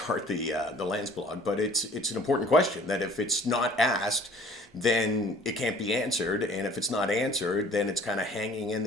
the Lance blog, but it's an important question that if it's not asked, then it can't be answered, and if it's not answered, then it's kind of hanging in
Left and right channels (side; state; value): both; normal; correlation 0.51